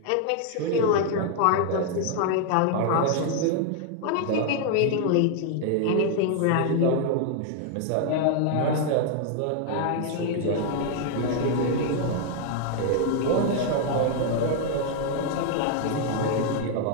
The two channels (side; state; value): both; different; correlation 0.00